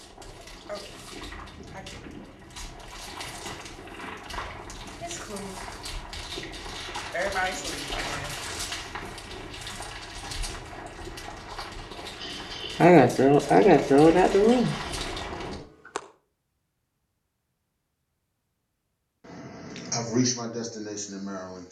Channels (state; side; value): identical; both; correlation 1.00